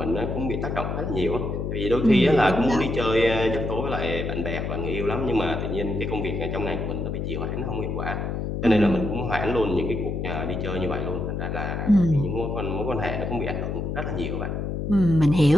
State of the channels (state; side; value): noise; left; hum, 3 dB below the sound